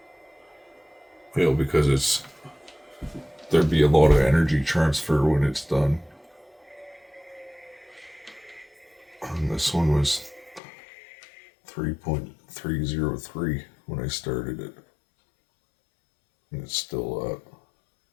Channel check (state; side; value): drops out; right; at 10.6 s